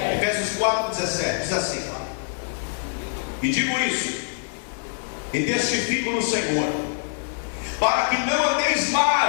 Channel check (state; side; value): silent; right; 58 dB below the other